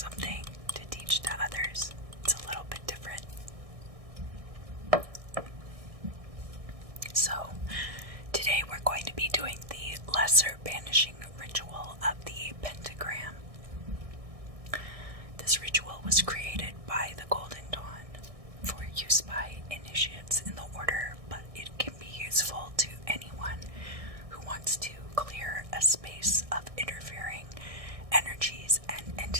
to teach to others, it's a little bit different. So, today we're going to be doing the lesser banishing ritual of the Pentagram. This ritual was created by the Golden Dawn for use by initiates in the order, but it can be useful to anyone who wants to clear a space of interfering energies and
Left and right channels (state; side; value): late; left; 1.6 ms